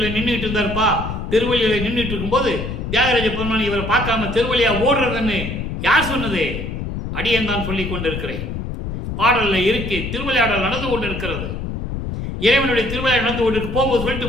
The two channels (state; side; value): noise; left; rumble, 5 dB below the sound